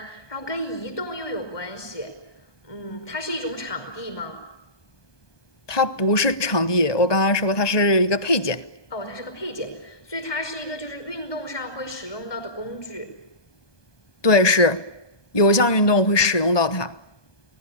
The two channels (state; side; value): late; right; 1.2 ms